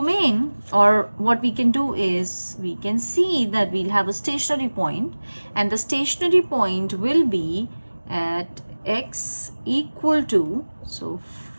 or what we can do is we can see that we'll have a stationary point, and the stationary point will be at x equal to, so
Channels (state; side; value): inverted; both; correlation -1.00